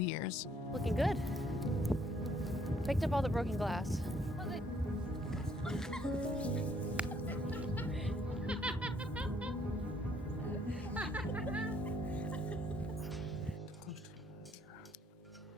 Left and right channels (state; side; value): normal; both; correlation 0.66